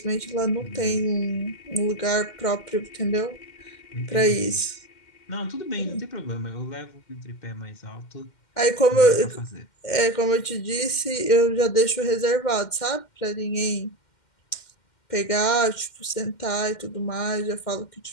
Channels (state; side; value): late; right; 2.1 ms